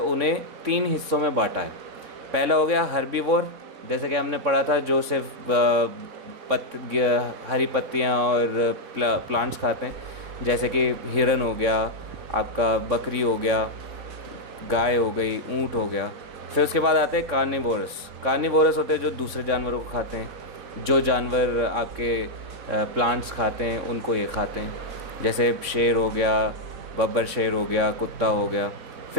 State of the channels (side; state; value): left; late; 3.6 ms